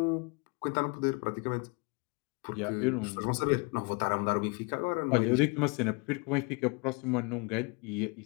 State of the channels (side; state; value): right; quieter; 31.0 dB